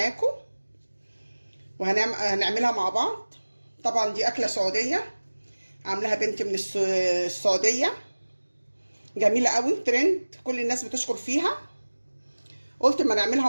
وهنعملها مع بعض. طبعا دي اكله سعوديه، عاملاها بنت من السعوديه، جميله قوي، ترند، كل الناس بتشكر فيها. قلت اما نعملها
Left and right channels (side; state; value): both; inverted; correlation -1.00